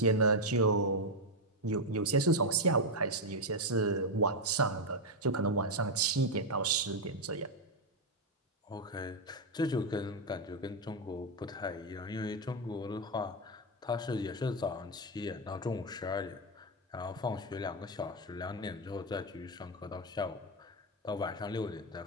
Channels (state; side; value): normal; both; correlation 0.03